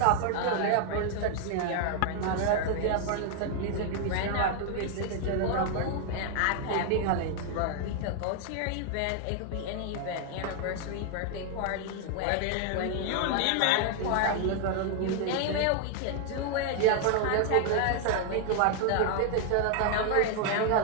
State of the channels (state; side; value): different; both; correlation 0.00